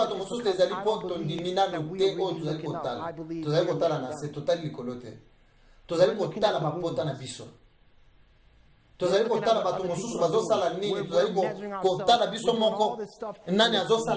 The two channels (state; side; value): identical; both; correlation 1.00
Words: mosusu tezali poto ndimina te o tozali kotala na se totali likolote. Tozali kotala mapota na biso. Tozali kotala bato mosusu bazosala nini, tozali kotala biso moko nani